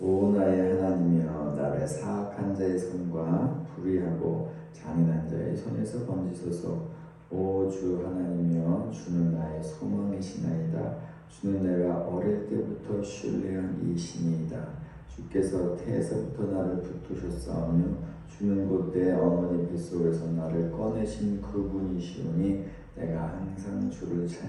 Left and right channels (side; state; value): both; identical; correlation 1.00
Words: 오 나의 하나님이여, 나를 사악한 자의 손과 불의하고 잔인한 자의 손에서 건지소서. 오 주 하나님이여, 주는 나의 소망이시나이다. 주는 내가 어릴 때부터 신뢰한 이 신이다. 주께서 태에서부터 나를 붙드셨사오며 주는 곧 내 어머니 뱃속에서 나를 꺼내신 그분이시오니 내가 항상 주를